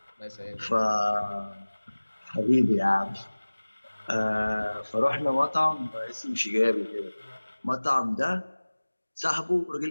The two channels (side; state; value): both; inverted; correlation -1.00